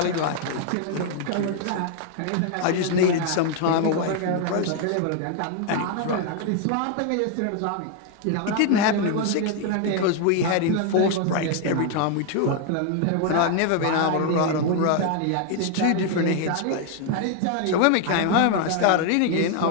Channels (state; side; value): different; both; correlation 0.00